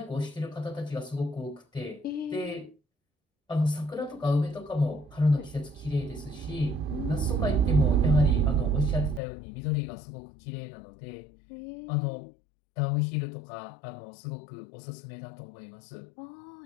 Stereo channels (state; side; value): drops out; right; at 9.2 s